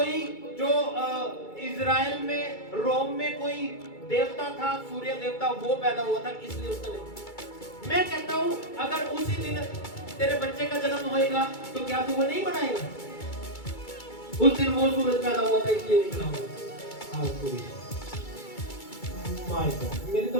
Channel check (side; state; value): right; late; 2.3 ms